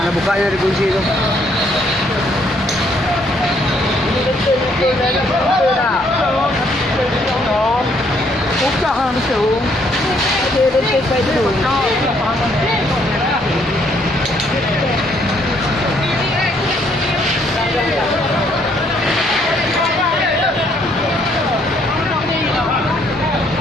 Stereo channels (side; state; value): both; normal; correlation 0.68